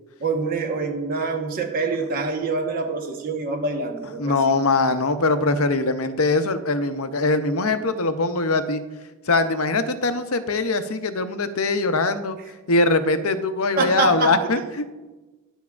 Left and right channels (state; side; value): normal; both; correlation -0.17